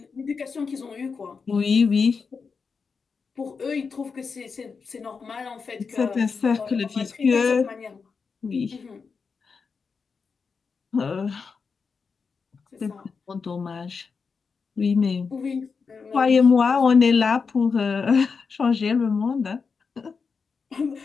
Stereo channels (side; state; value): right; quieter; 5.2 dB